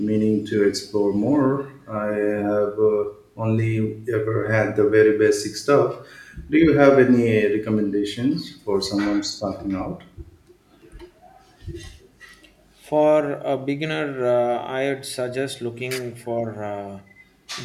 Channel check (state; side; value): identical; both; correlation 1.00